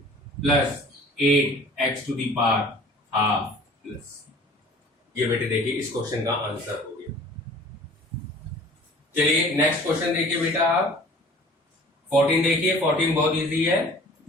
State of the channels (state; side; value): normal; both; correlation 0.47